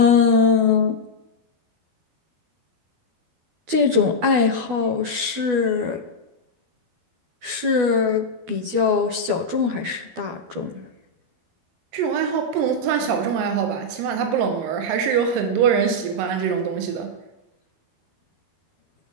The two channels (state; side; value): late; left; 12 ms